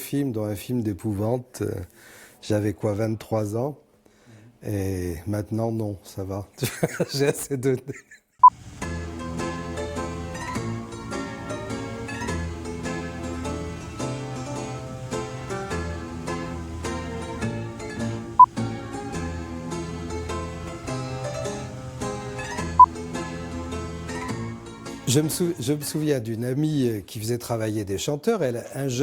dont un film d'épouvante. J'avais quoi, 23 ans? Et maintenant, non, ça va. J'ai assez donné. Je me souviens d'une amie qui faisait travailler des chanteurs. Un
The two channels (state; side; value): identical; both; correlation 1.00